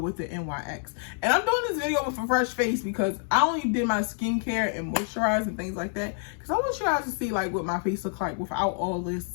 the NYX. And I'm doing this video with a fresh face because I only did my skincare and moisturize and things like that because I want you guys to see like what my face looks like without all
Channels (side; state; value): right; silent; 60 dB below the other